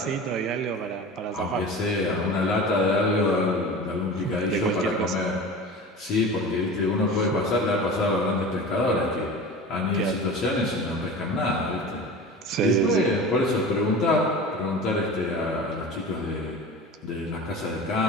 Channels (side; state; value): both; normal; correlation 0.34